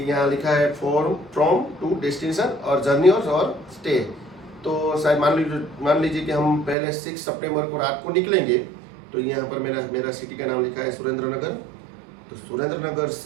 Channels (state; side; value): drops out; left; at 6.8 s